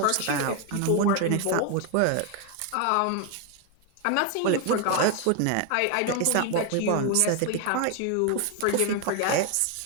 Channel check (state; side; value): different; both; correlation 0.01